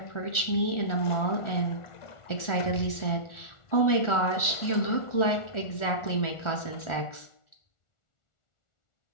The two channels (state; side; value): late; right; 1.4 ms